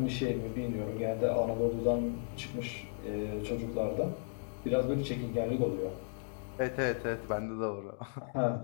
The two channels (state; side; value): silent; right; digital silence